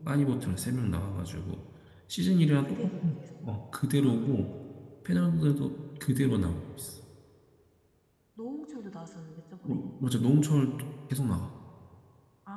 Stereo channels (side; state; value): both; identical; correlation 1.00